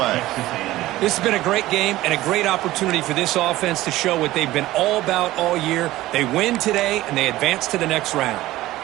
This has been a great game and a great opportunity for this offense to show what they've been all about all year. They win today and they advance to the next round.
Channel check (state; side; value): quieter; left; 16.5 dB